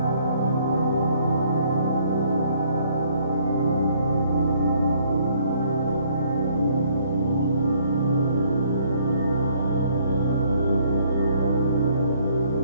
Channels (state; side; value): inverted; both; correlation -0.64